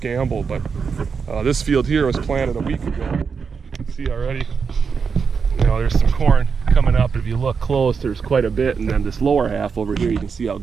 but this field here was planted a week ago. You can see already, there's some corn coming up. If you look close, there's quite a bit, and then this lower half over here, you can see how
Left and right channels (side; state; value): left; quieter; 5.8 dB